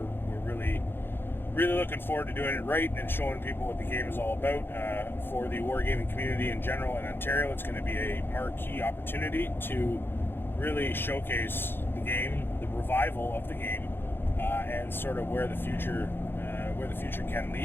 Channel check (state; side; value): late; right; 0.10 ms